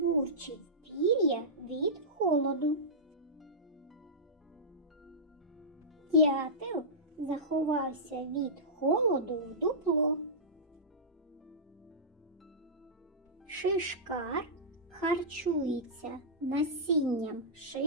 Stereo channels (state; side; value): normal; both; correlation -0.16